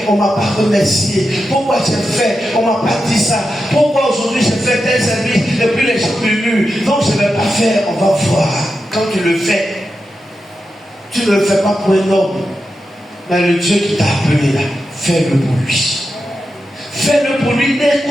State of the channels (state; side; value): normal; both; correlation 0.89